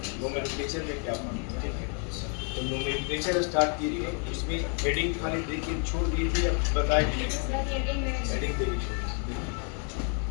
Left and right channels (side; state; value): right; quieter; 39.8 dB